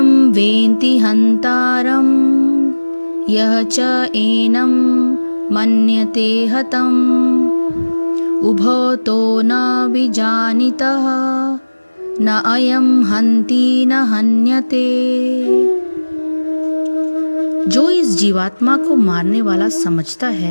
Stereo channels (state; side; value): inverted; both; correlation -1.00